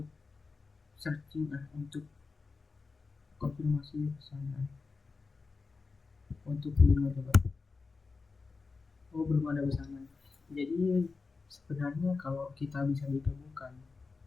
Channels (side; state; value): right; quieter; 4.3 dB